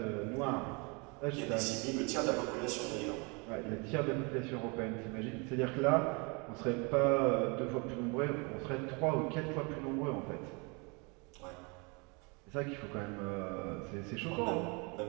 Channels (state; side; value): quieter; left; 30.8 dB